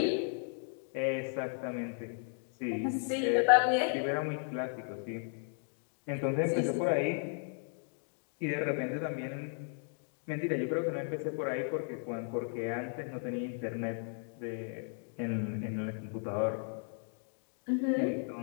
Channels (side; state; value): right; silent; 54 dB below the other